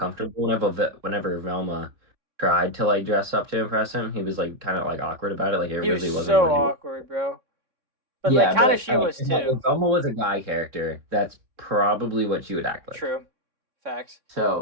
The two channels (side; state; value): left; late; 3.6 ms